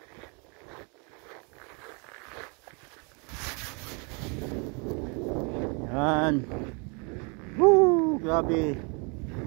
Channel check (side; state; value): left; quieter; 33.7 dB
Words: Yan. Woo! Grabe.